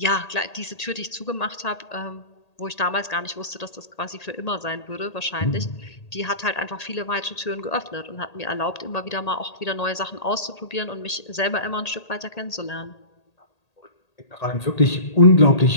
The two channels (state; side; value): late; right; 1.8 ms